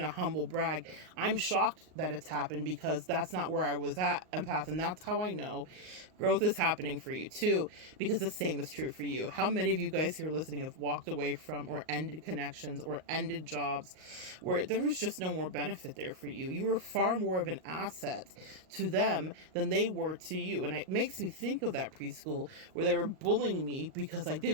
a humble brag. I'm shocked that it's happened because that's not where I was at, empath, and that's how I know growth is happening for you too, because the same is true for you. How many of you guys here listening have walked away from or ended connections or ended jobs where there was just no more benefit there for you? You were far more of an asset to them than they were to you. And it makes me think of that preschool where they were bullying me because I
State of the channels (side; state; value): left; late; 38 ms